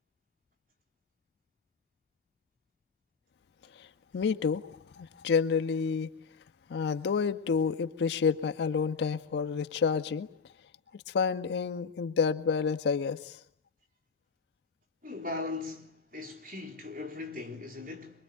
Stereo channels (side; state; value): right; quieter; 5.4 dB